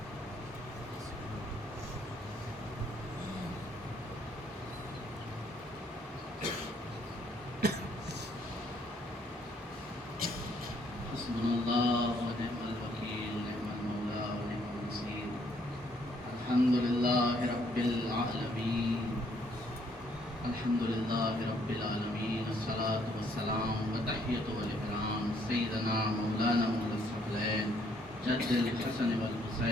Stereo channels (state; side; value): normal; both; correlation 0.67